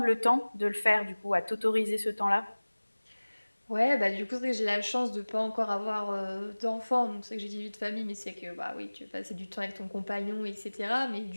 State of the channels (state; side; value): inverted; both; correlation -1.00